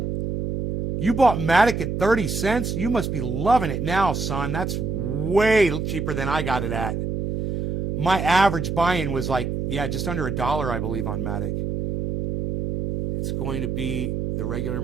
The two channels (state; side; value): noise; right; hum, 2 dB below the sound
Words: You bought Matic at 30 cents? You must be loving it now, son. That's way cheaper than I got it at. My average buy-in was like, just under $1, I believe, on Matic. It's going to be the regular